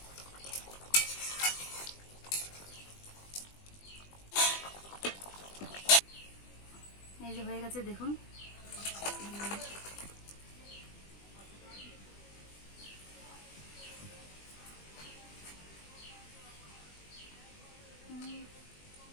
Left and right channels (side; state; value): right; late; 20 ms